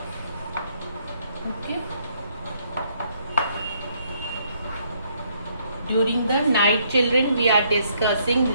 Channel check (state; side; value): inverted; both; correlation -0.70